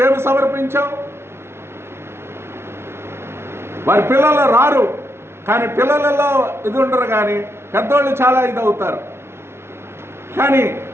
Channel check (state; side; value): late; left; 0.12 ms